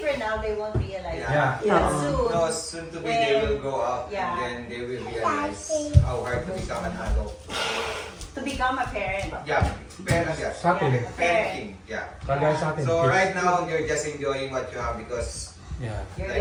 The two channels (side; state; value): both; identical; correlation 1.00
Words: now they won't realize. Yeah. But No, soon, soon to be they will grow up Yeah. and then they will realize how hard to become an adult. to become a parent. Yeah, parent, yeah. Sa atin. Parenting, yeah. Kagaya sa atin. So kids. right now, you're just enjoying what you have because Yeah. You're like,